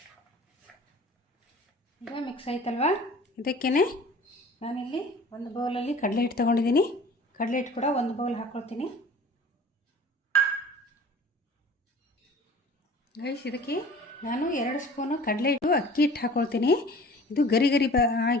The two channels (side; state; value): both; normal; correlation 0.45